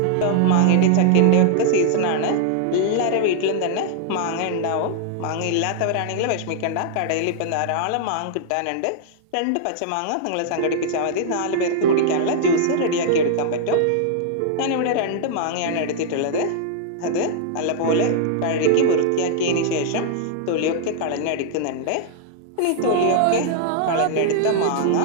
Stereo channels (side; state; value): both; different; correlation -0.01